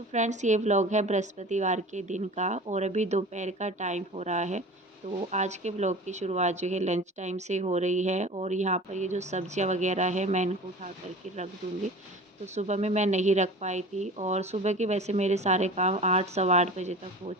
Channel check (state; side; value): normal; both; correlation 0.38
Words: फ्रेंड्स, ये व्लॉग है बृहस्पतिवार के दिन का और अभी दोपहर का टाइम हो रहा है। तो आज के व्लॉग की शुरुआत जो है लंच टाइम से हो रही है और यहाँ पर ये जो सब्जियाँ वगैरह है मैं इनको उठा करके रख दूँगी। तो सुबह में मैं नहीं रख पाई थी और सुबह के वैसे मेरे सारे काम 8 सवा 8 बजे तक हो